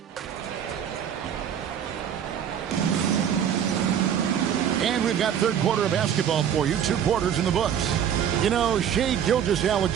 And we've got third quarter of basketball for you. 2 quarters in the books. You know, Shai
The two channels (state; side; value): quieter; left; 9.0 dB